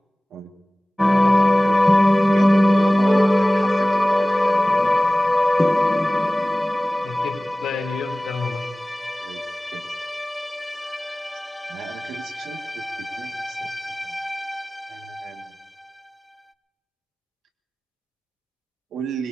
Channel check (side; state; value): both; normal; correlation 0.98